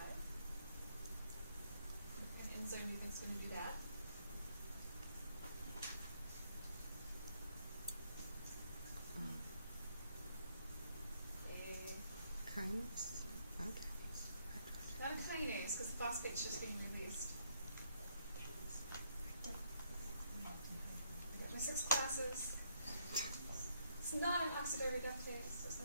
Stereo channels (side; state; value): both; inverted; correlation -0.71